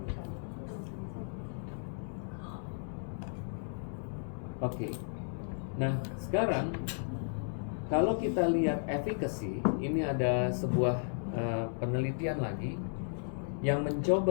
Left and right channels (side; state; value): right; silent; 55 dB below the other